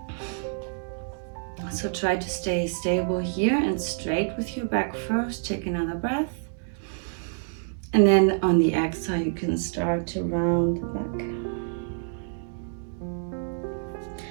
So try to stay stable here and straight with your back first. Take another breath. And then on the exhale, you can start to round the back.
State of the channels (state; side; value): silent; left; 60 dB below the other